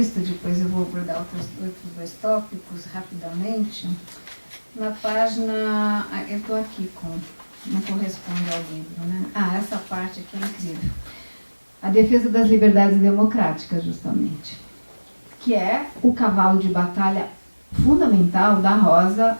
depois eu vou abordar outros dois tópicos rapidamente. Na página, eu estou aqui não corresponde ao livro, né? Essa parte aqui é incrível. A defesa das liberdades democráticas, justamente, que é o cavalo de batalha fundamental da Rosa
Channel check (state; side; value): inverted; both; correlation -1.00